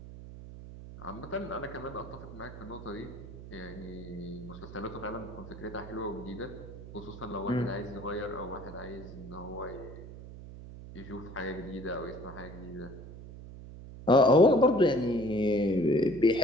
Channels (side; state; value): right; noise; hum, 13 dB below the sound